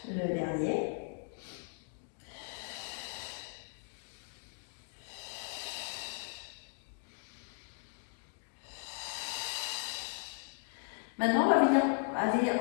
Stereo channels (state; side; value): silent; right; digital silence